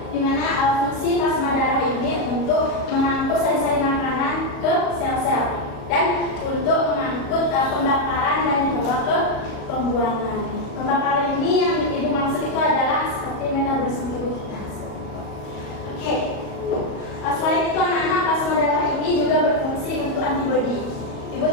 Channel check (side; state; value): right; late; 38 ms